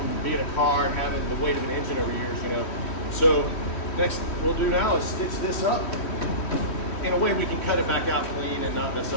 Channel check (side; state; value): right; late; 3.1 ms